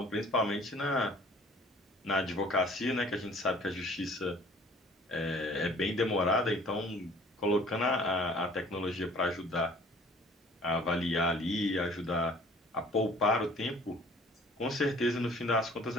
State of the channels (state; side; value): normal; both; correlation 0.52